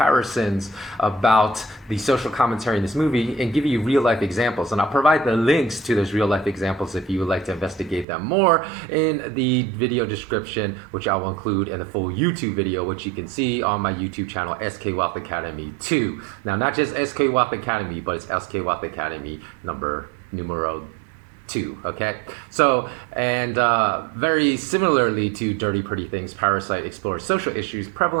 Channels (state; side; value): drops out; left; at 8.1 s